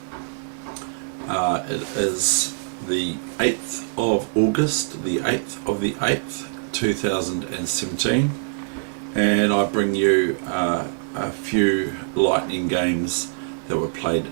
It is the 8th of August, the 8th of the 8th, 2017, and I bring you a few lightning games that were played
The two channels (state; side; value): silent; left; digital silence